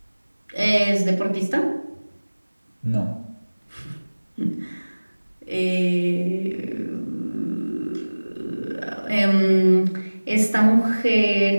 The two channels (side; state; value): both; inverted; correlation -1.00